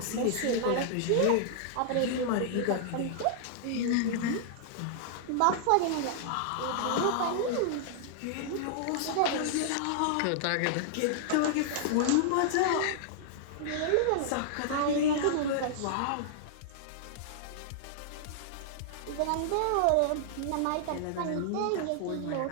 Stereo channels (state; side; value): different; both; correlation -0.01